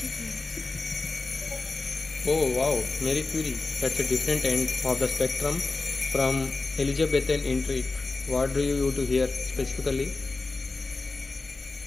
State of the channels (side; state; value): right; quieter; 3.6 dB